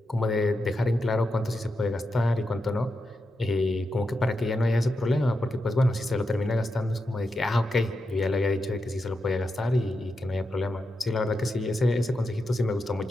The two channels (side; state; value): both; normal; correlation 0.87